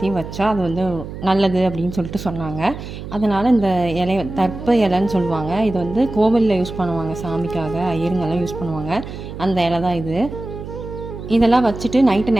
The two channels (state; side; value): noise; right; hum, 10 dB below the sound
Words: வச்சா அது வந்து நல்லது அப்படின்னு சொல்லிட்டு சொன்னாங்க. அதனால் இந்த இலை தர்ப்ப இலைன்னு சொல்லுவாங்க. இது வந்து கோவிலில் யூஸ் பண்ணுவாங்க, சாமிக்காக ஐயருங்கெல்லாம் யூஸ் பண்ணுவாங்க. அந்த இலை தான் இது. இதெல்லாம் வச்சுட்டு நைட்டு